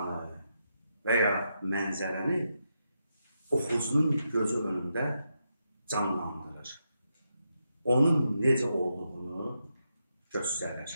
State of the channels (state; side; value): inverted; both; correlation -0.84